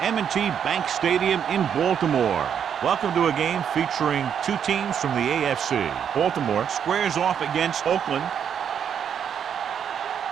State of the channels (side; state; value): left; quieter; 8.2 dB